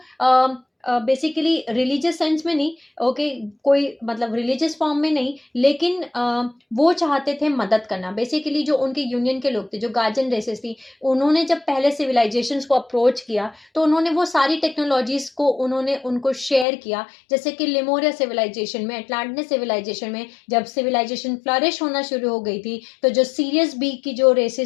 बेसिकली रिलीजियस सेंस में नहीं, ओके, कोई मतलब रिलीजियस फॉर्म में नहीं, लेकिन वो चाहते थे मदद करना। बेसिकली जो उनके यूनियन के लोग थे, जो गार्जियन रेसेस थी, उन्होंने जब पहले सिविलाइजेशंस को अप्रोच किया तो उन्होंने वो सारी टेक्नोलॉजीज को उन्होंने उनको शेयर किया। जैसे कि लिमोरिया सिविलाइजेशन में, अटलांटिस सिविलाइजेशन में जब सिविलाइजेशन फ्लरिश होना शुरू हो गई थी, तो जो सीरियस बी की जो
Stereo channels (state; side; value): drops out; right; at 16.7 s